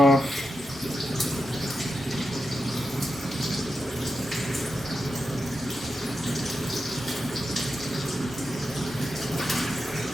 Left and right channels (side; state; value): both; normal; correlation 0.89